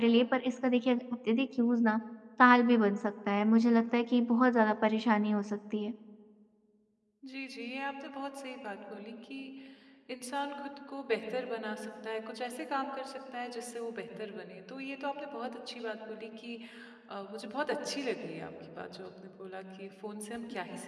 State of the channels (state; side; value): identical; both; correlation 1.00